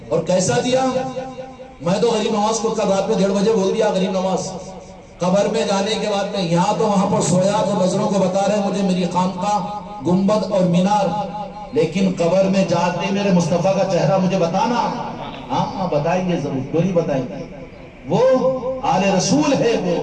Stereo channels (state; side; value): identical; both; correlation 1.00